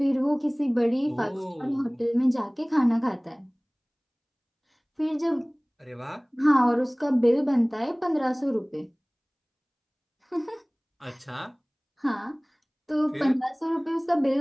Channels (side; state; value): both; identical; correlation 1.00